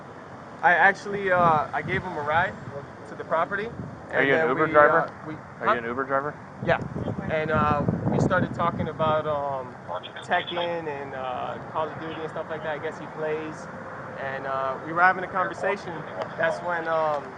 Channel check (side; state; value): both; identical; correlation 1.00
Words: gave him a ride to the property. Are you an Uber driver? Are you an Uber driver? Yeah. And we started talking about Tekken and Call of Duty and stuff like that. I guess he plays. And we were having a conversation. That's when